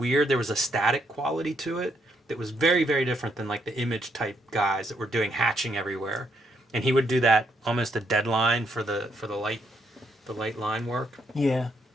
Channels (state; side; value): normal; both; correlation 0.74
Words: There was a static quality to it that was very, very different than like the image type guys that were doing hatching everywhere. And he would do that almost a deadline for the light line work. Yeah.